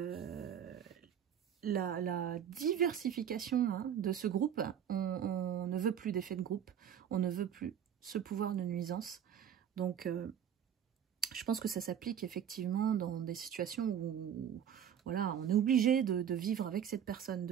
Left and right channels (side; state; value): left; quieter; 9.1 dB